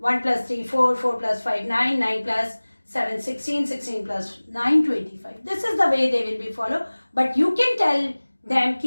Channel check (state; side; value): inverted; both; correlation -1.00